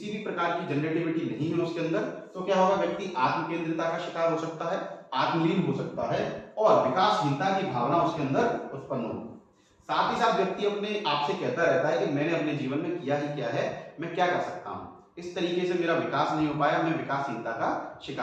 भी प्रकार की जनरेटिविटी नहीं है उसके अंदर, तो क्या होगा, व्यक्ति आत्म केंद्रिता का शिकार हो सकता है, आत्मलीन हो सकता है, और विकासहीनता की भावना उसके अंदर उत्पन्न होगी। साथ ही साथ व्यक्ति अपने आप से कहता रहता है कि मैंने अपने जीवन में किया ही क्या है, मैं क्या कर सकता हूं, इस तरीके से मेरा विकास नहीं हो पाया, मैं विकासहीनता का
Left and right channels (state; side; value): identical; both; correlation 1.00